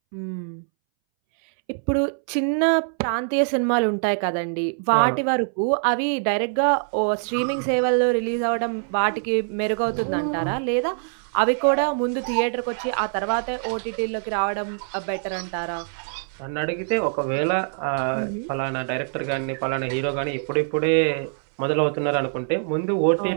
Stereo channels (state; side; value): silent; left; 62 dB below the other